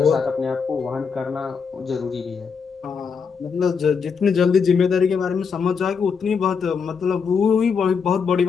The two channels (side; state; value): right; quieter; 5.9 dB